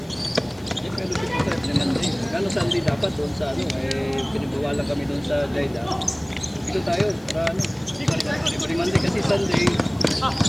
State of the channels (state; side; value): noise; left; hiss, 26 dB below the sound